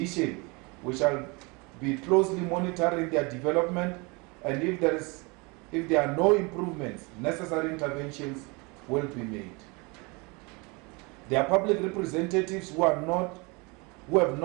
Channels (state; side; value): quieter; left; 28.3 dB